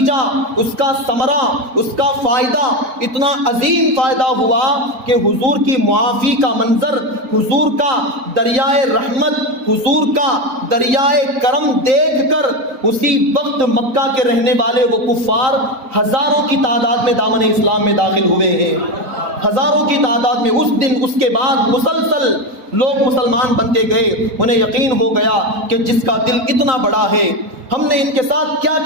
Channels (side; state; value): left; late; 3.8 ms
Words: اس کا ثمرہ، اس کا فائدہ اتنا عظیم فائدہ ہوا کہ حضور کی معافی کا منظر، حضور کا دریائے رحمت، حضور کا دریائے کرم دیکھ کر اسی وقت مکہ کے رہنے والے وہ کفار ہزاروں کی تعداد میں دامن اسلام میں داخل ہوئے ہیں، ہزاروں کی تعداد میں۔ اس دن اس کے بعد مسلسل لوگ مسلمان بنتے گئے، انہیں یقین ہو گیا کہ جس کا دل اتنا بڑا ہے، ہم نے ان کے ساتھ کیا